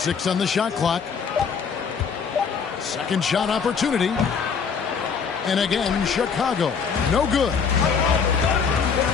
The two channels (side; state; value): right; quieter; 6.1 dB